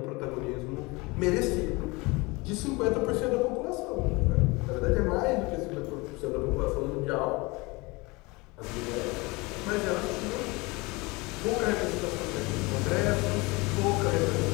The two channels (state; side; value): quieter; right; 24.9 dB